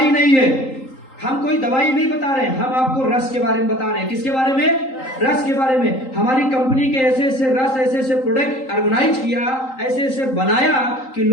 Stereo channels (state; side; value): late; right; 3.8 ms